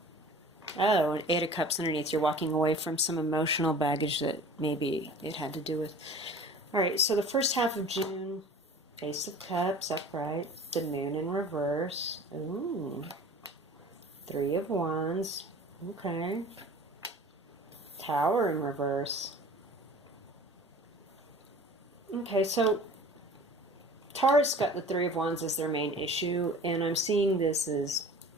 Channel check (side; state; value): both; normal; correlation 0.43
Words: Oh, and 8 of Cups underneath. You're walking away from some emotional baggage that maybe it had to do with. All right, so the first half of June, Ace of Cups upright, the Moon in reverse. Ooh, 3 of Wands. Okay. Tower in reverse. Okay, so Taurus got the 3 of Wands as their main issue, and I'm seeing this as,